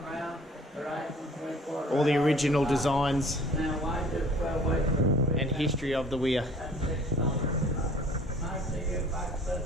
all the original designs and history of the weir.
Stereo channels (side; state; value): both; normal; correlation 0.52